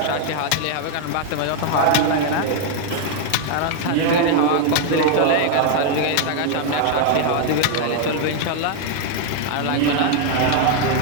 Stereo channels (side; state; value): both; different; correlation 0.00